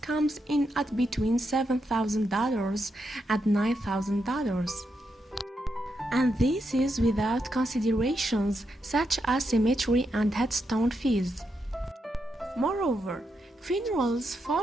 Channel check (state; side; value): normal; both; correlation 0.83